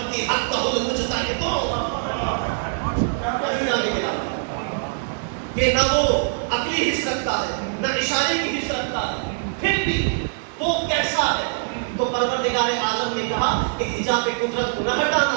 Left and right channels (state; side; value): silent; left; digital silence